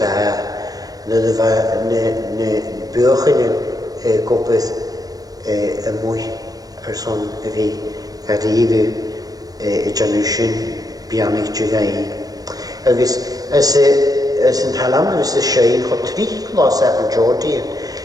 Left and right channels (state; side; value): late; left; 0.18 ms